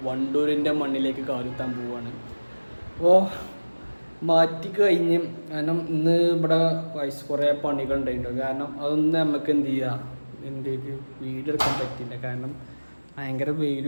വണ്ടൂരിൻ്റെ മണ്ണിലേക്ക് കാലുത്താൻ പോവുകയാണ്. അപ്പോൾ മാറ്റി കഴിഞ്ഞ് കാരണം ഇന്ന് ഇവിടെ ഗായ്സ് കുറേ പണികൾ ഉണ്ടായിട്ടുണ്ട്. കാരണം അതൊന്നും നമുക്ക് എന്ത് ചെയ്യുക എന്തേക്ക് വീഡിയോ എടുക്കാൻ പറ്റില്ല. കാരണം ഭയങ്കര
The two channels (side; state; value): both; inverted; correlation -1.00